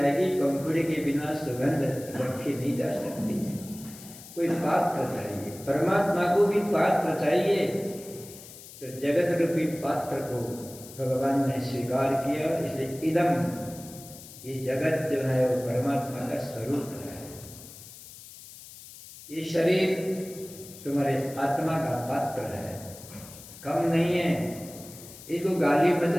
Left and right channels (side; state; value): left; noise; hiss, 17 dB below the sound